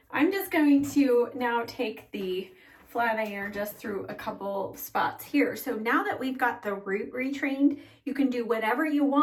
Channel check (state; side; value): identical; both; correlation 1.00